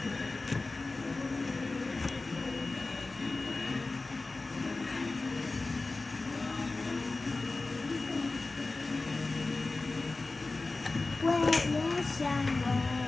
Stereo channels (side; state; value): right; quieter; 3.4 dB